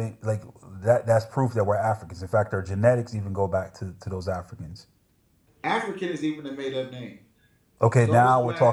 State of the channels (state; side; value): identical; both; correlation 1.00